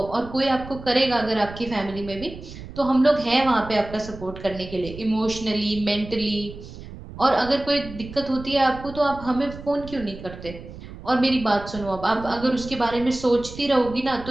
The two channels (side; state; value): right; noise; rumble, 14 dB below the sound